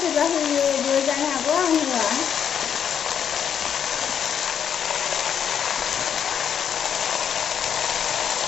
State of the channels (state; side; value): quieter; right; 8.2 dB